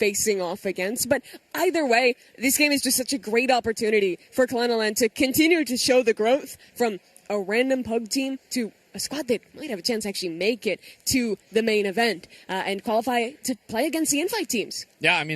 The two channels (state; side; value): identical; both; correlation 1.00